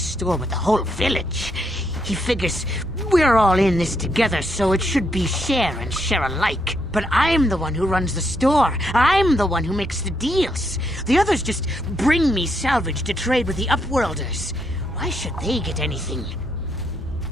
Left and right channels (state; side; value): normal; both; correlation 0.77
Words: with the whole village. He figures we're all in this together, so it should be share and share alike. But I'm the one who runs the store. I'm the one who makes the deals. The others just bring me salvage to trade with the Upworlders. Why should they get anything?